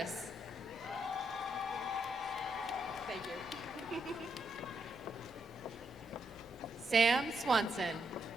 Thank you. Sam Swanson.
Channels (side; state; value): both; normal; correlation 0.79